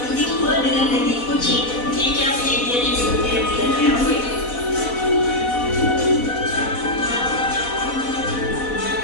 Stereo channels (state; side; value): late; right; 4.1 ms